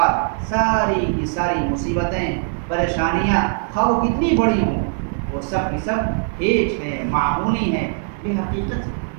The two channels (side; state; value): left; silent; 65 dB below the other